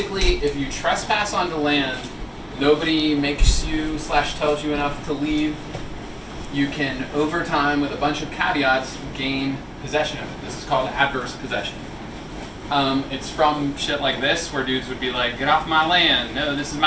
if you trespass onto land, nobody makes you / tells you enough to leave, you can, over time, with a bunch of caveats, gain possession of it. This is called adverse possession. It's from shit like this, where dudes would be like, get off my land, no, this is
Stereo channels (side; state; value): both; identical; correlation 1.00